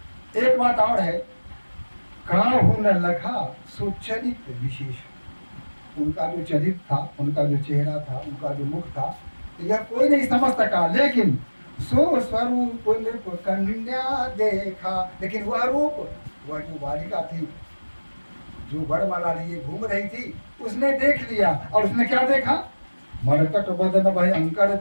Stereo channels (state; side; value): inverted; both; correlation -1.00